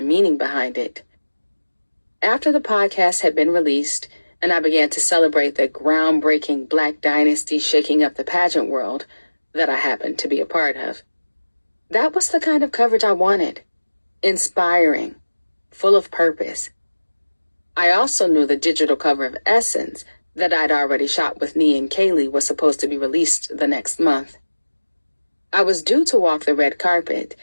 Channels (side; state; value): both; inverted; correlation -1.00